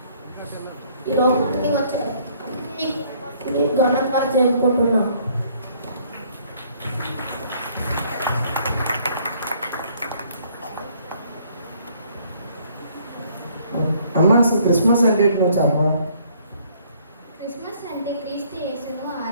ఈ లోకానికి వచ్చారు. ఘనంగా జరుపుకుంటున్నాం. అమ్మ అసలు క్రిస్మస్ అంటే నువ్వు చెప్పవా? క్రిస్మస్ అంటే క్రీస్తు యేసును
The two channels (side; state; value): both; inverted; correlation -0.62